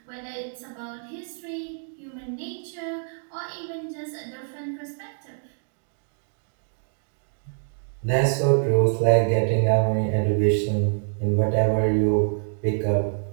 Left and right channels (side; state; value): left; silent; digital silence